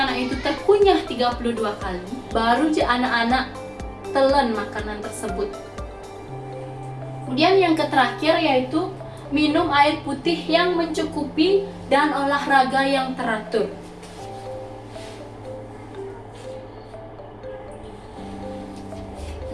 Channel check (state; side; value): identical; both; correlation 1.00